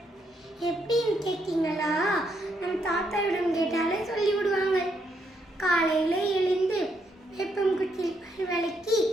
எப்படின்னு கேட்டீங்களா? நம் தாத்தாவிடம் கேட்டாலே சொல்லிவிடுவாங்க. காலையில் எழுந்து வேப்பங்குச்சியில் பல் விளக்கி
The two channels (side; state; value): both; normal; correlation 0.76